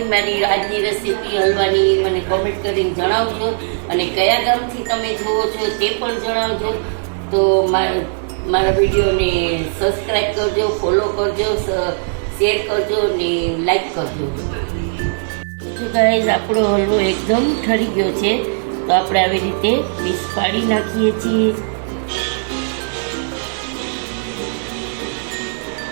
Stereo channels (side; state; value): left; silent; digital silence